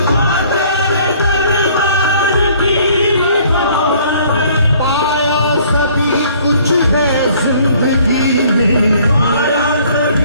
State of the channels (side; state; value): both; inverted; correlation -0.57